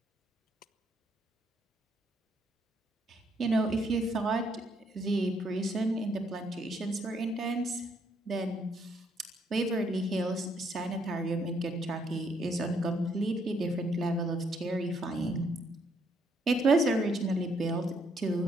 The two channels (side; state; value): both; normal; correlation 0.71